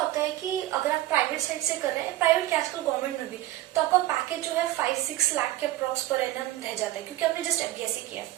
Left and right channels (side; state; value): left; quieter; 15.4 dB